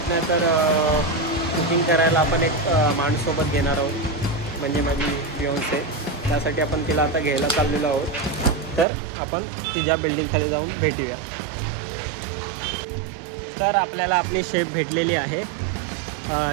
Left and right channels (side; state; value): left; drops out; at 8.8 s